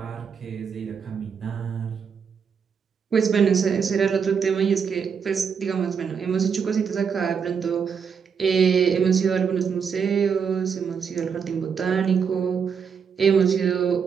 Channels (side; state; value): left; quieter; 6.6 dB